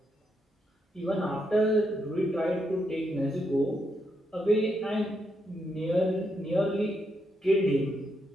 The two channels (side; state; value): both; normal; correlation 0.80